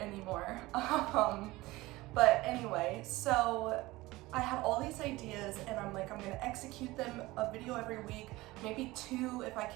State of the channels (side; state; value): left; quieter; 19.7 dB